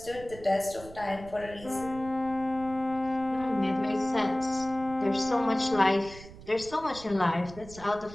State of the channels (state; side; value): noise; right; rumble, 17 dB below the sound